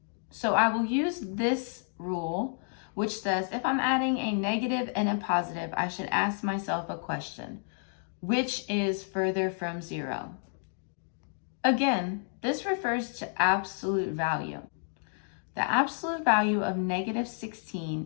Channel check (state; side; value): silent; right; 57 dB below the other